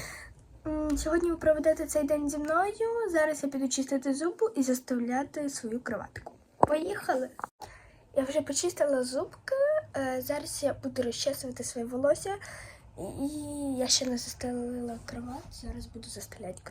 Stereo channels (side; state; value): both; identical; correlation 1.00